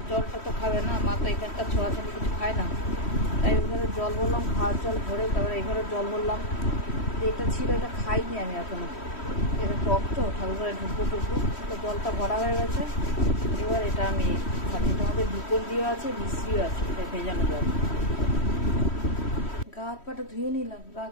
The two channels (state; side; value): late; right; 3.1 ms